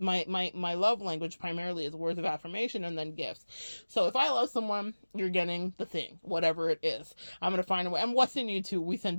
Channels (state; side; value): inverted; both; correlation -1.00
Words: love language primarily is words of affirmation and then gifts. So if I love someone, you're getting the thing, whatever it is. I'm going to find a way. And what's in you too? We send